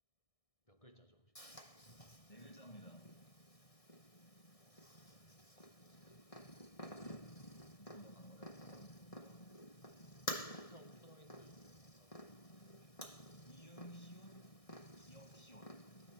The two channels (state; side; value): late; right; 1.6 ms